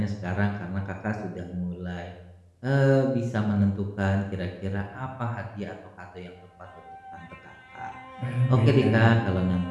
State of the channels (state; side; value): identical; both; correlation 1.00